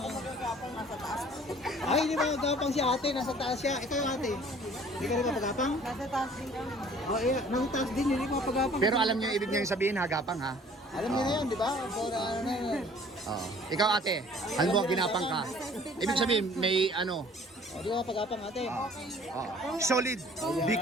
Ay, hindi ba gapang si ate? Nasa taas siya. Ikaw yung ate. Hindi ka rin mapagapang? Nasa taas din kami. Oh, nasa taas din. Hindi ka mapagapang. Pero alam niyo yung ibig niyang sabihin, hagapang ha? Alam niyo na yan, di ba? Para ano na yan. Oo. Ikaw ate, ano mo ginapang ka? Ibig sabihin, may ano, Hindi ka mapagapang ate. solid,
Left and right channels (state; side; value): normal; both; correlation 0.53